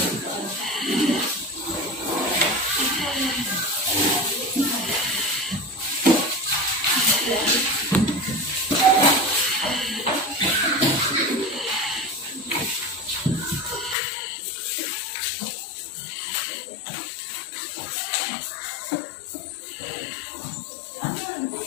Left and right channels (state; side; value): drops out; right; at 14.0 s